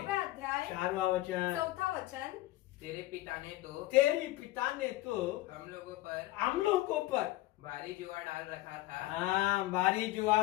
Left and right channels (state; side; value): quieter; right; 17.4 dB